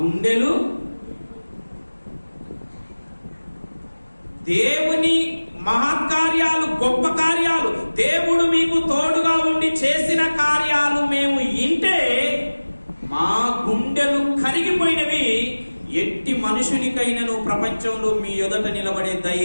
దేవుని మహత్కార్యాలు, గొప్ప కార్యాలు, దేవుడు మీకు తోడుగా ఉండి చేసిన కార్యాలు మేము వింటే మా గుండెలు కరిగిపోయినవి. ఎట్టి మనుషునికైనను ప్రపంచంలో మీ ఎదుట నిలబడే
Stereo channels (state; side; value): inverted; both; correlation -1.00